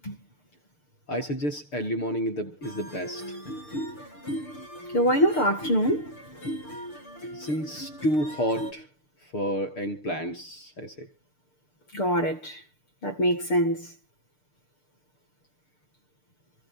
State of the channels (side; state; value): right; late; 6.7 ms